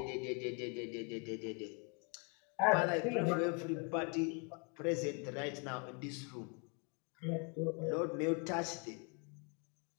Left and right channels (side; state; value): right; quieter; 36.1 dB